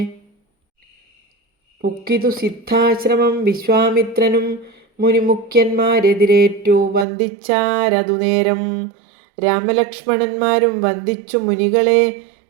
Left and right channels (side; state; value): left; drops out; at 7.1 s